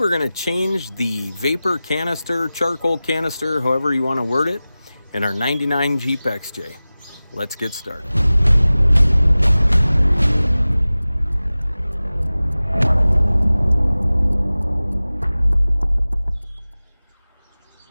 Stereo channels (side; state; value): both; inverted; correlation -0.97